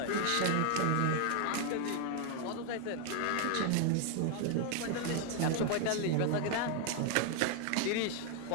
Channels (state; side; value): different; both; correlation 0.00